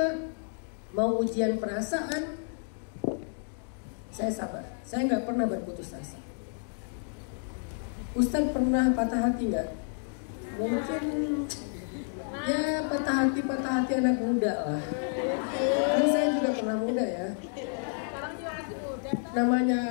mau ujian perasaan, saya sabar. Saya nggak pernah berputus asa. Ustadz pernah patah hati nggak? Mungkin ya patah hati anak muda lah. Karena saya juga pernah muda ya.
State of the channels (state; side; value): silent; right; 58 dB below the other